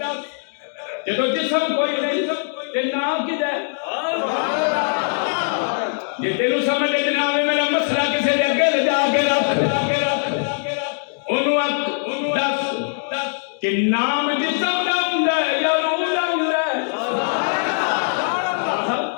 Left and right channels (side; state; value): right; silent; digital silence